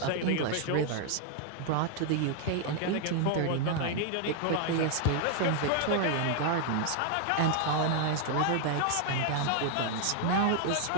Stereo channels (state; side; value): different; both; correlation 0.00